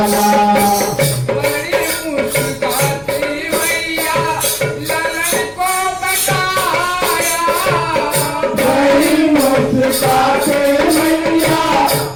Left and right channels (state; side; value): noise; left; hum, 26 dB below the sound